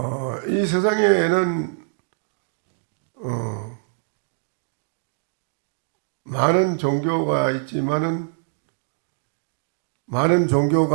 이 세상에는 많은 종교가 있지만은 많은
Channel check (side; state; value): left; silent; digital silence